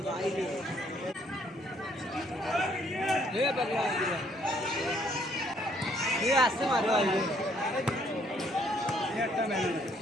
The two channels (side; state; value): both; normal; correlation 0.66